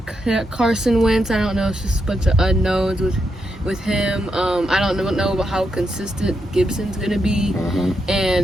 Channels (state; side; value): normal; both; correlation 0.83